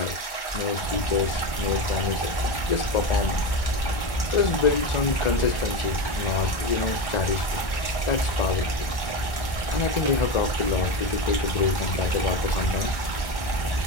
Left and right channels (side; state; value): right; late; 1.4 ms